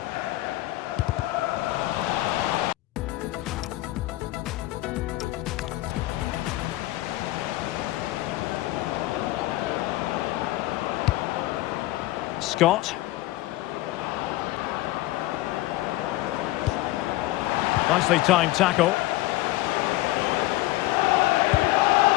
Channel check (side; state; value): right; quieter; 17.8 dB